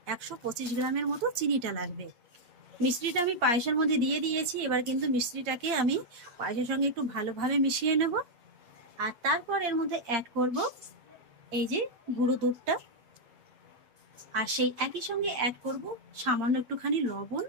125 গ্রামের মতো চিনিটা লাগবে। মিশ্রিটা আমি পায়েসের মধ্যে দিয়ে দিয়েছি, এবার কিন্তু মিশ্রিটাকে আমি পায়েসের সঙ্গে একটু ভালোভাবে মিশিয়ে নেব। আর তারপর এর মধ্যে অ্যাড করব এই যে গুঁড়ো দুধটা, আর সেই একই সঙ্গে অ্যাড করব সামান্য একটুখানি লবণ।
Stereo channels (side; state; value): left; late; 8.3 ms